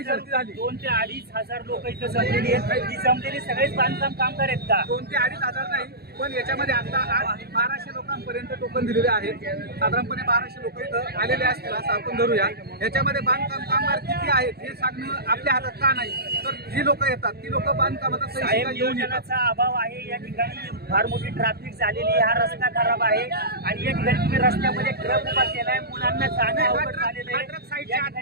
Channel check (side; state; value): left; late; 0.46 ms